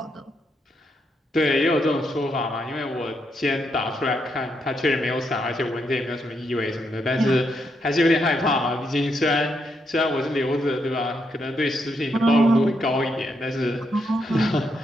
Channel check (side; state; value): both; normal; correlation 0.79